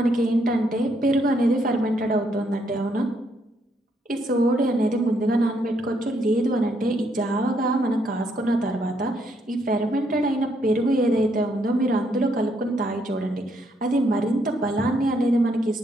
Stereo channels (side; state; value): both; normal; correlation 0.73